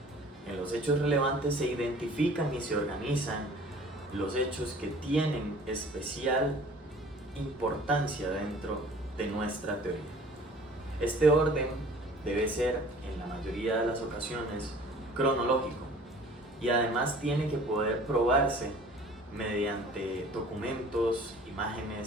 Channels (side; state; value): both; normal; correlation 0.49